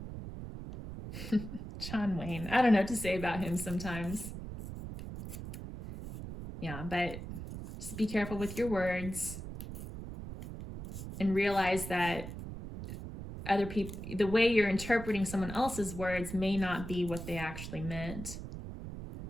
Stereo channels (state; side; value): noise; right; rumble, 9 dB below the sound